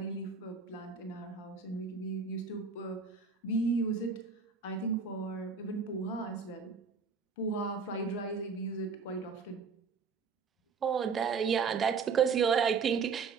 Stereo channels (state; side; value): quieter; left; 5.3 dB